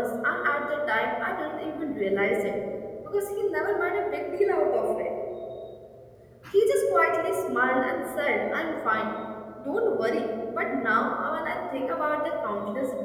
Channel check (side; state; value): both; identical; correlation 1.00